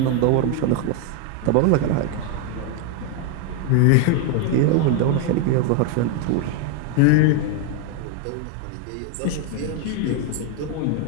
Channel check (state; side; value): different; both; correlation 0.01